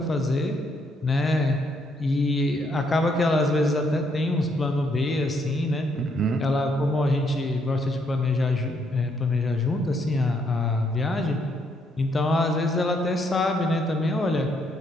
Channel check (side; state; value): both; normal; correlation 0.73